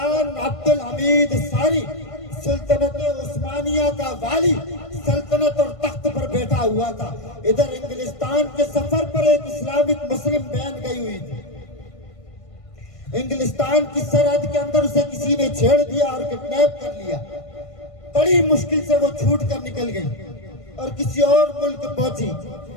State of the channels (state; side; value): late; right; 1.5 ms